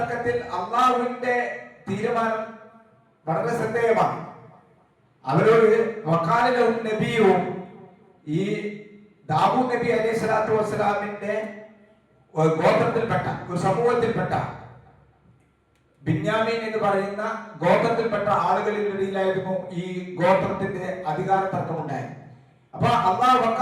അള്ളാഹുവിന്റെ തീരുമാനം വളരെ ശ്രദ്ധേയമാണ്. അവരോട് വഖാലലഹും നബിയും, ഈ ദാവൂദ് നബി അലൈഹി സ്വലാത്തു വസ്സലാമിന്റെ ഗോത്രത്തിൽപ്പെട്ട ഒരു സമൂഹത്തിൽപ്പെട്ട ബിന്യാമീൻ എന്ന് പറയുന്ന ഗോത്രത്തിൽപ്പെട്ട ആളുകളിലിടയിലായിരുന്നു ഈ ഗോത്രത്തിന്റെ അധികാര തർക്കമുണ്ടായത്. അപ്പൊ അല്ലാഹു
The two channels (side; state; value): both; identical; correlation 1.00